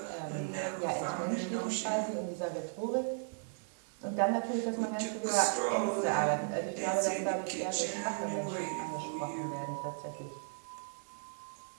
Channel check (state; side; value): silent; left; digital silence